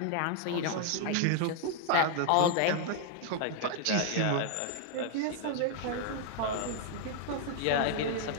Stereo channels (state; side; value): different; both; correlation 0.00